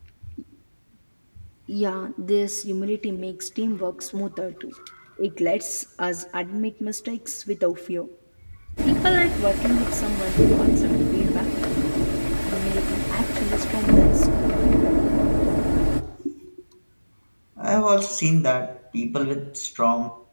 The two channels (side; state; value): both; inverted; correlation -1.00